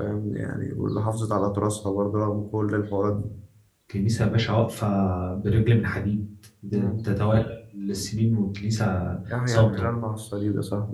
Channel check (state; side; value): identical; both; correlation 1.00